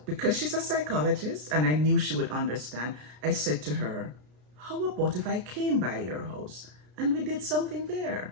because she's a psychologist and I knew she would understand, I said to her, how about if I came by your house and we did something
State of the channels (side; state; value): left; late; 33 ms